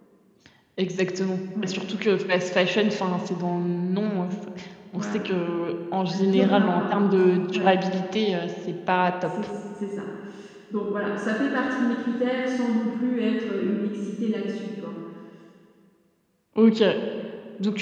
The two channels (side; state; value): both; identical; correlation 1.00